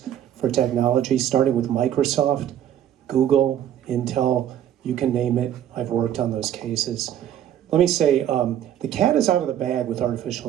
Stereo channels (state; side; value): quieter; left; 10.7 dB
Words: for technology, starting with Microsoft, Google, Intel, you can name it. I've worked on those cases. Let me say, the cat is out of the bag with